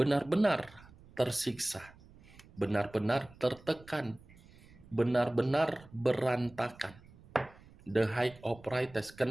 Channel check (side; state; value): right; noise; rumble, 23 dB below the sound